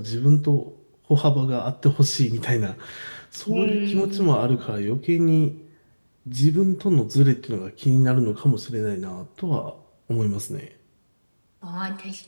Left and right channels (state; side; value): inverted; both; correlation -1.00